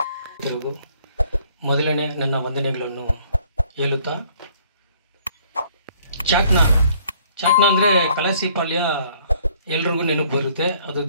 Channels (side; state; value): both; inverted; correlation -0.60